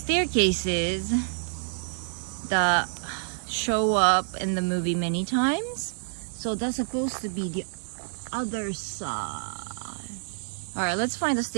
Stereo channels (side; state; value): left; silent; digital silence